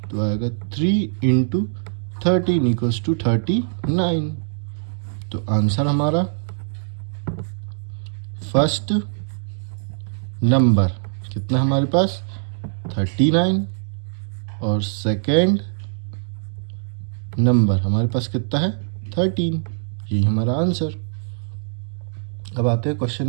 तो आएगा 3 इंटू 13 इक्वल्स टू 39। तो आंसर हमारा फर्स्ट नंबर कितना हमारे पास? 39, और सेकेंड नंबर हमारे पास कितना है? 13। यही हमारा आंसर। अब आते हैं क्वेश्चन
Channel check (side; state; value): left; silent; digital silence